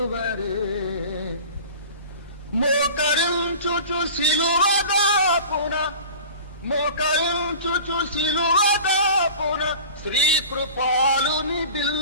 మోకరించుచు సిలువదాపున, మోకరించుచు సిలువదాపున శ్రీకృపాలుని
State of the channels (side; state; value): both; inverted; correlation -0.39